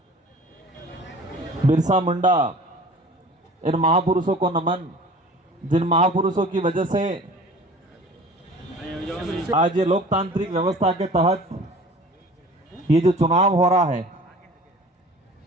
बिरसा मुंडा, इन महापुरुषों को नमन, जिन महापुरुषों की वजह से आज ये लोकतांत्रिक व्यवस्था के तहत ये जो चुनाव हो रहा है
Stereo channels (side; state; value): both; normal; correlation 0.44